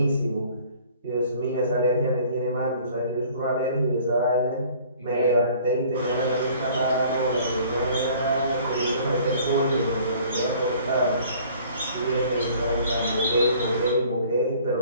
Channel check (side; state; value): both; inverted; correlation -0.53